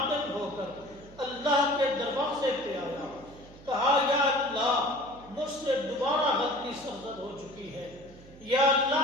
ہو کر اللہ کے دروازے پہ آیا، کہا یا اللہ مجھ سے دوبارہ غلطی سرزد ہو چکی ہے، یا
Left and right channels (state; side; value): noise; right; hum, 21 dB below the sound